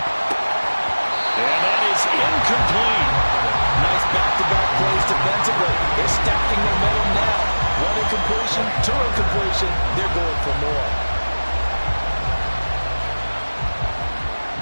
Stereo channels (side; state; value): both; inverted; correlation -1.00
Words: And that is incomplete. Nice back-to-back plays defensively. They're stacking their momentum now. One incompletion, two incompletion. They're going for more.